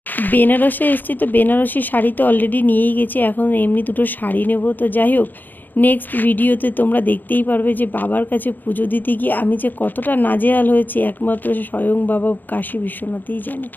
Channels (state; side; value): late; right; 0.087 ms